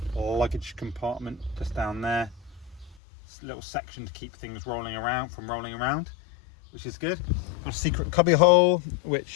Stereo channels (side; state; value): right; drops out; at 3.0 s